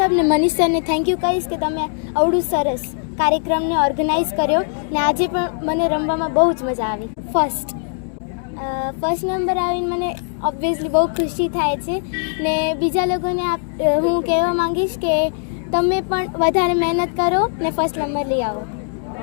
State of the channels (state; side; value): silent; right; digital silence